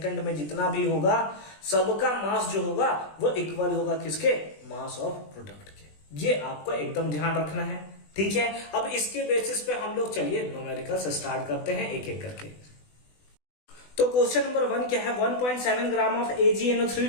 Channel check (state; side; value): late; right; 20 ms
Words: में जितना भी होगा सबका मास जो होगा वो इक्वल होगा किसके? मास ऑफ प्रोडक्ट के। ये आपको एकदम ध्यान रखना है। ठीक है, अब इसके बेसिस पे हम लोग चलिए न्यूमेरिकल्स स्टार्ट करते हैं एक एक करके। तो क्वेश्चन नंबर 1 क्या है, 1.7 ग्राम ऑफ AgNO3